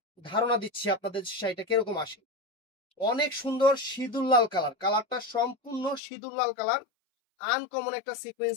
ধারণা দিচ্ছি আপনাদের শাড়িটা কিরকম আসে। অনেক সুন্দর সিঁদুর লাল কালার, কালারটা সম্পূর্ণ সিঁদুর লাল কালার, আনকমন একটা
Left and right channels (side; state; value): right; drops out; at 6.0 s